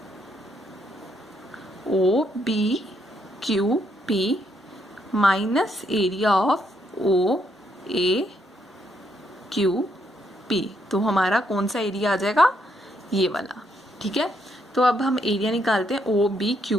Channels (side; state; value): both; normal; correlation 0.75